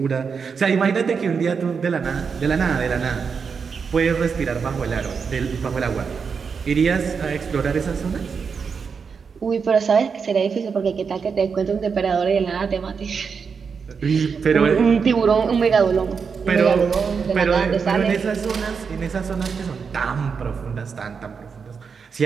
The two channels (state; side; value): quieter; left; 5.8 dB